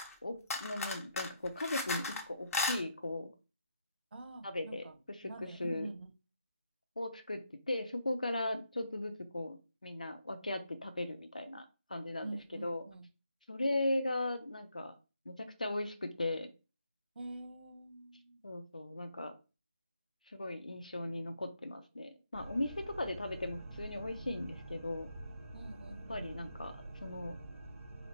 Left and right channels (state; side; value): inverted; both; correlation -0.77